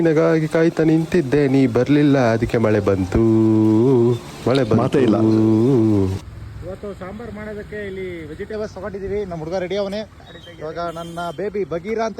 ಕಾಯ್ತಾ ನಿಂತಿದ್ದೆ, ನೀ ಬರ್ಲಿಲ್ಲ, ಅದಕ್ಕೆ ಮಳೆ ಬಂತು. ಮಾತೇ ಇಲ್ಲ. ಇವತ್ತು ಸಾಂಬಾರ್ ಮಾಡೋದಕ್ಕೆ ಇಲ್ಲಿ ವೆಜಿಟೇಬಲ್ಸ್ ತಗೊಂಡಿದ್ದೀವಿ. ನಮ್ಮ ಹುಡುಗ ರೆಡಿ ಅವನೇ. ಇವಾಗ ನನ್ನ ಬೇಬಿ ಬಗೀರಾ ಅಂತ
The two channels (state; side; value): identical; both; correlation 1.00